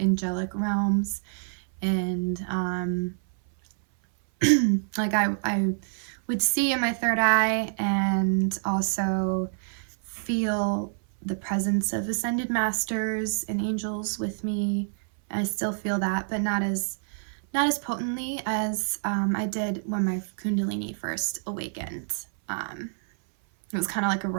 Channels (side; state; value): left; silent; 58 dB below the other